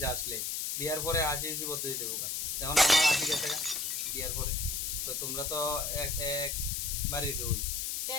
আসলে বিয়ার পরে হাসি হাসি পদ্ধতি দেবো এখন আমার হাসি গেছে বিয়ার পরে তো তোমরা তো এক বাড়ির রই তো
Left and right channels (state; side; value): noise; left; hiss, 1 dB below the sound